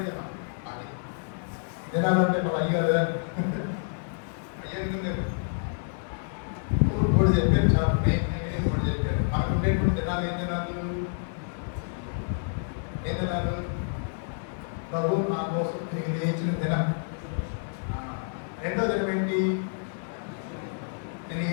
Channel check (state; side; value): silent; right; digital silence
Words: దినం. అది దినాలంటే మన అయ్యారు కూడా చెప్పారు. చాలా నేను కూడా చెప్పారు. మనకు ఉండేటువంటి దినాలు ఏం దినాలు? ప్రభు నా కోసం తిరిగి లేచిన దినం. రెండో దినం ఏంటి? నేను